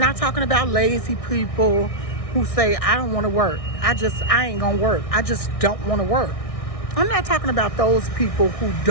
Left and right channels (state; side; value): late; right; 1.6 ms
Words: talking about lazy people who say, I don't want to work. I ain't gonna work. I just don't want to work. I'm not talking about those people